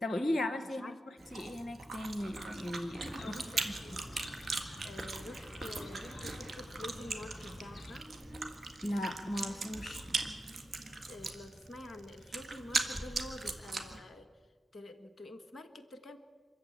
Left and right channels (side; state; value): both; normal; correlation 0.89